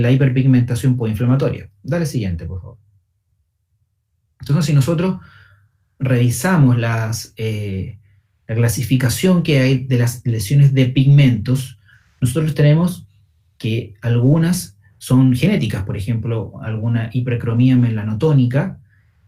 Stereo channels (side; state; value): both; identical; correlation 1.00